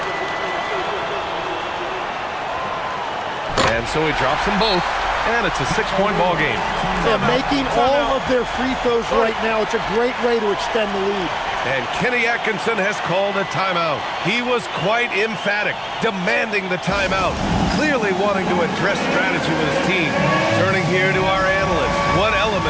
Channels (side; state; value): both; identical; correlation 1.00